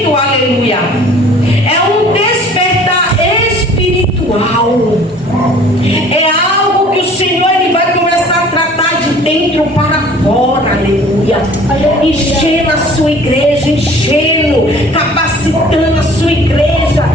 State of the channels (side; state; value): both; normal; correlation 0.50